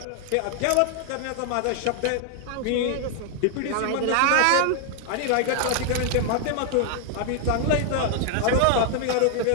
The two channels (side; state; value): both; different; correlation 0.00